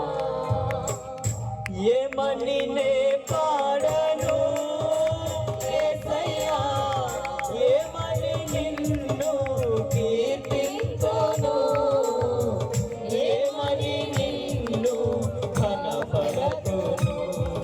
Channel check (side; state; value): both; identical; correlation 1.00